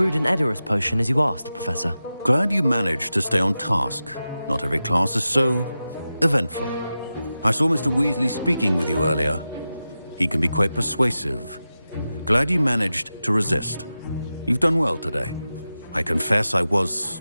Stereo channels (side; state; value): both; inverted; correlation -0.93